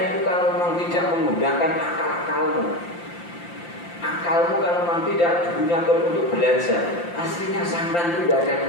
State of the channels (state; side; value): late; right; 5.8 ms